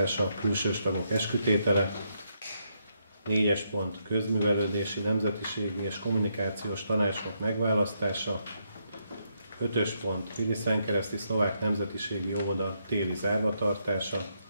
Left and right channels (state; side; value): inverted; both; correlation -0.78